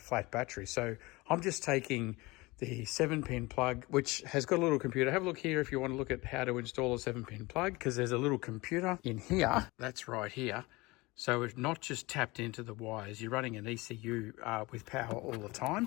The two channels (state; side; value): quieter; right; 22.9 dB